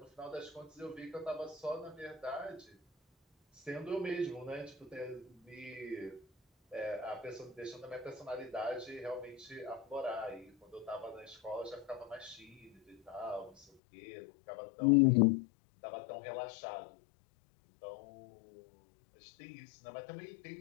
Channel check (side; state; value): right; drops out; at 13.7 s